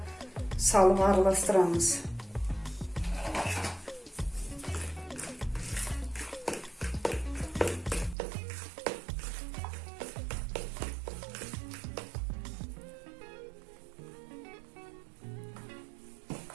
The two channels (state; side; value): drops out; left; at 8.2 s